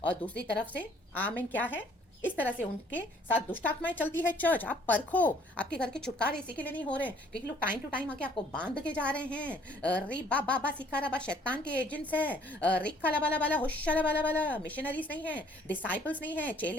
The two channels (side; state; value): both; normal; correlation 0.59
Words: और दूसरी तरफ से आमीन क्या है, इस तरह से उनके साथ दुष्ट आत्माएं चलती है चर्च। आप परखो, आपके घर के छुटकारे इसी के लिए नहीं हो रहे हैं क्योंकि लोग टाइम टू टाइम आके आपको बांध के जा रहे हैं। री बाबा सिखा रबा, शैतान के एजेंट्स है। रिक्का लबाला बाला होशा बाला बाला, मिशनरीज नहीं है, डिसाइपल्स नहीं है,